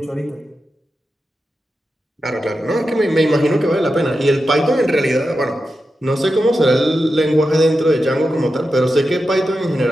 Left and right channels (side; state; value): both; normal; correlation 0.90